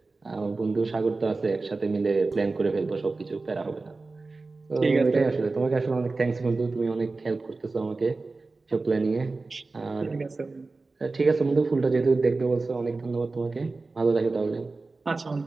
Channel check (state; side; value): quieter; left; 3.6 dB